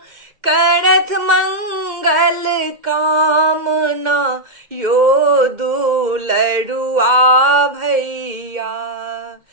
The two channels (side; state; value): left; late; 2.1 ms